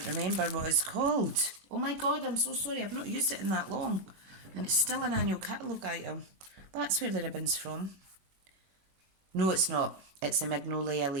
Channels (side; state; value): left; late; 21 ms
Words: remember what it's called. Oh my god, I'm so sorry, I've not used it in that long, and it's still an annual catalogue item. That's where the ribbon's from. No, it's not. It's a Magnolia